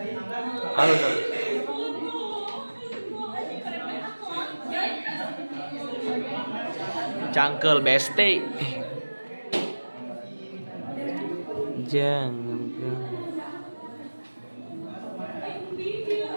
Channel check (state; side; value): inverted; both; correlation -1.00